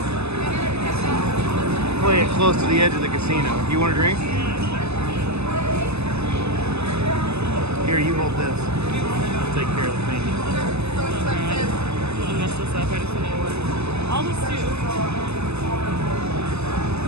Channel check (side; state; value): left; late; 0.80 ms